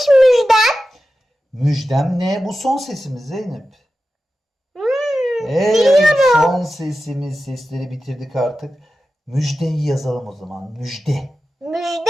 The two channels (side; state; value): both; normal; correlation 0.93